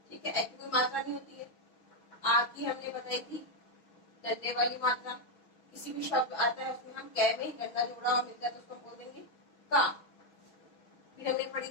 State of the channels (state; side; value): late; right; 6.2 ms